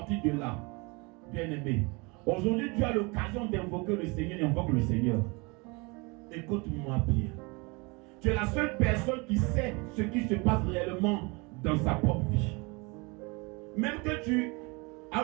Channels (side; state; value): left; quieter; 28.0 dB